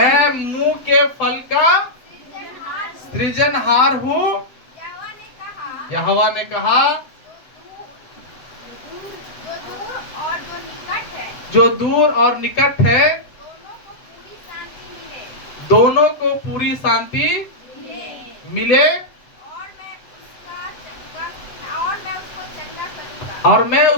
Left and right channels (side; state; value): right; late; 7.8 ms